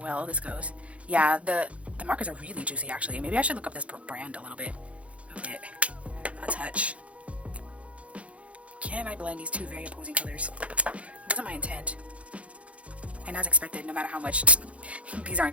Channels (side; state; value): left; late; 0.063 ms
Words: this goes. Yeah, the markers are really juicy, actually. Maybe I should look up this brand a little bit. A touch. Can I blend these two very opposing colors? That wasn't my intent. And as expected, no matter how much, these aren't